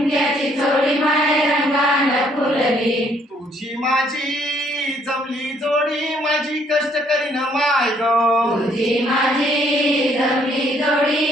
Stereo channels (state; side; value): normal; both; correlation 0.66